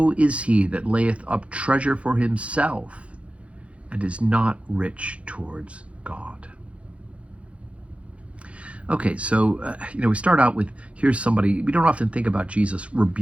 is he that layeth up treasure for himself, and is not rich towards God. Okay, so, we start out with, here's somebody, we don't often think about Jesus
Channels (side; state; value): left; late; 0.062 ms